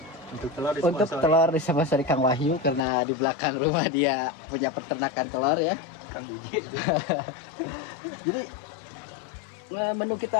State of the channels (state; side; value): drops out; right; at 2.8 s